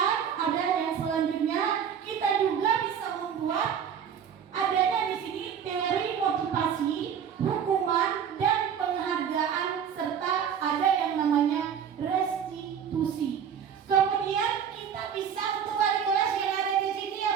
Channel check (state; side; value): quieter; left; 8.0 dB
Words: ada yang selanjutnya, kita juga bisa membuat adanya di sini teori motivasi, hukuman dan penghargaan serta ada yang namanya restitusi. Kemudian kita bisa untuk wali kelas yang ada di sini ya